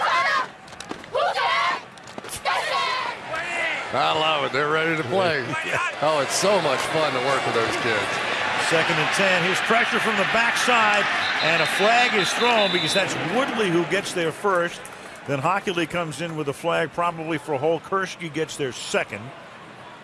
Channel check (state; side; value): identical; both; correlation 1.00